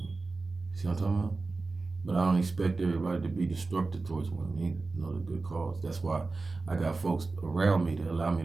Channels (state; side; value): quieter; left; 3.7 dB